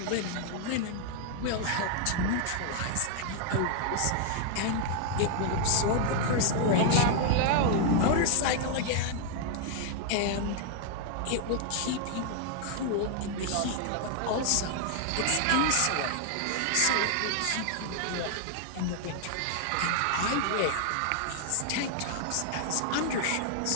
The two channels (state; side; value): different; both; correlation 0.00